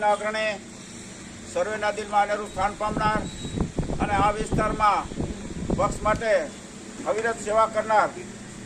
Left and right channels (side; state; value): both; identical; correlation 1.00